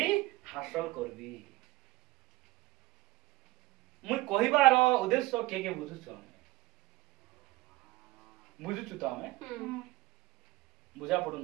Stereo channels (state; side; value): quieter; left; 20.3 dB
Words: हासिल करबी। मुई कहिबार उद्देश्य के बुझुछु? आमे बुझुछु तो आमे बुझा पडु